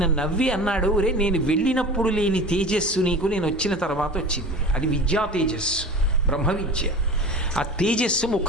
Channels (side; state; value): both; normal; correlation 0.36